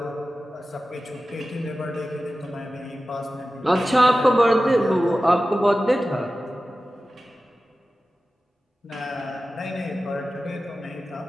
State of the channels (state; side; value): normal; both; correlation 0.95